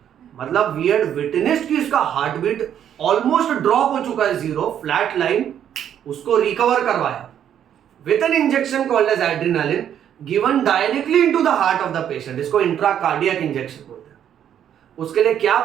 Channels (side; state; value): left; quieter; 9.7 dB